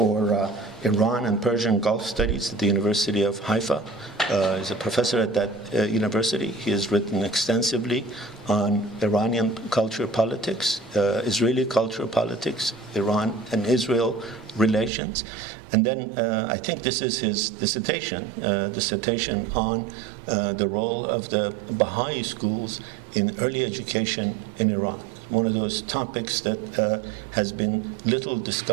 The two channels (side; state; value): left; drops out; at 14.9 s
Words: Iran and Persian Gulf Studies at the University of Haifa. He's a professor at that university. He has written extensively on Iranian culture politics, Israeli culture politics, Iran and Israel relations. And then I think this is his dissertation on the role of the Baha'i schools in early education in Iran. One of those topics that has been little